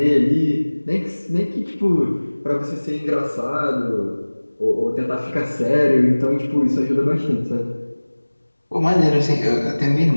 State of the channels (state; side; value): inverted; both; correlation -1.00